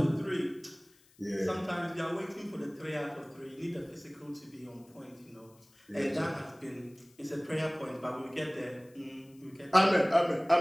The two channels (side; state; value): left; noise; hiss, 29 dB below the sound